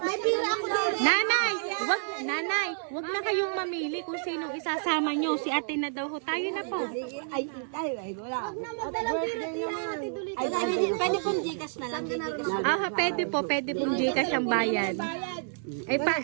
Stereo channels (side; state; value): left; silent; digital silence